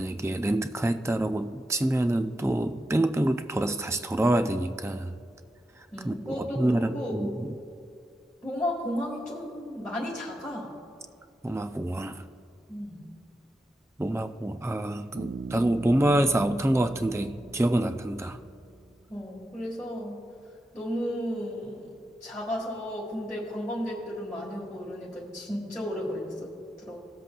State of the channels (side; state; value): both; normal; correlation 0.87